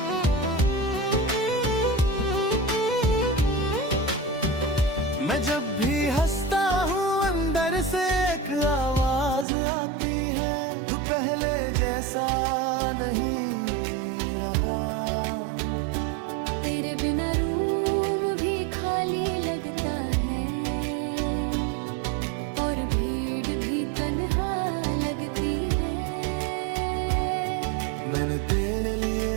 मैं जब भी हंसता हूँ अंदर से एक आवाज आती है, तू पहले जैसा नहीं रहा। तेरे बिना रूम भी खाली लगता है, और भीड़ भी तन्हा लगती है। मैंने तेरे लिए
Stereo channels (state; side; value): drops out; left; at 9.5 s